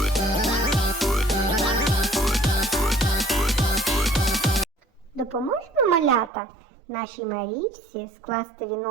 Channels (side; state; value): left; drops out; at 6.3 s